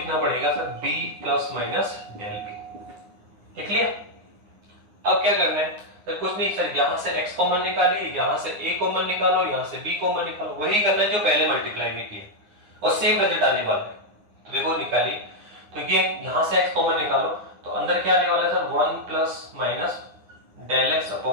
पड़ेगा sir b plus minus del b। ठीक है। अब क्या करना है सर, कुछ नहीं सर, यहां से x कॉमन निकालिए, यहां से a कॉमन निकालो, यहां से b कॉमन निकालो, वही करना है जो पहले मल्टीप्लाई में किया और सेम रिजल्ट आने वाला है। तो देखो निकालिए, तो ये यहां से x कॉमन निकालो तो अंदर क्या आने वाला है sir 1 plus minus del x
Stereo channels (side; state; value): left; late; 9.8 ms